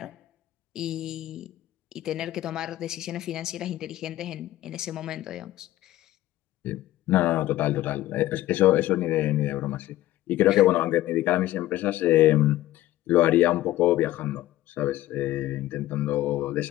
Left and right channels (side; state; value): right; quieter; 15.2 dB